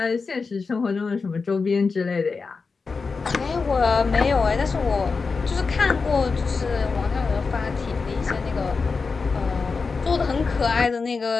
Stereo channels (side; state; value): right; quieter; 4.6 dB